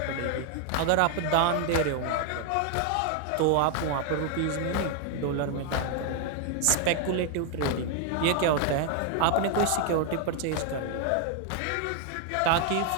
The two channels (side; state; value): both; different; correlation 0.00